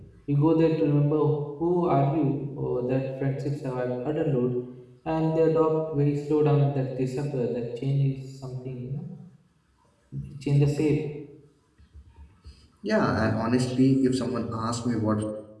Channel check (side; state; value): both; identical; correlation 1.00